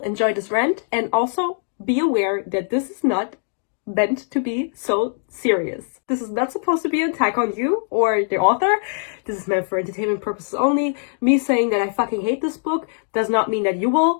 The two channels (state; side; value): silent; right; digital silence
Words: this rant and also be aware that this is not meant to be so serious. This is not supposed to be an attack on you or the author. This is meant for entertainment purposes only. Me saying that I fucking hate this book does not mean that you